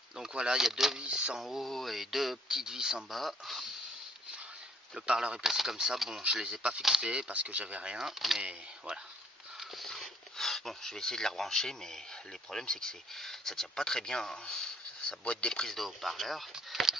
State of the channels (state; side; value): normal; both; correlation 0.64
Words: Donc voilà, il y a deux vis en haut et deux petites vis en bas. Le parleur est placé comme ça. Bon, je les ai pas fixés parce que j'avais rien, mais voilà. Bon, je vais essayer de les rebrancher, mais le problème c'est que ça tient pas très bien. Hein. Sa boîte des prises de haut-parleur,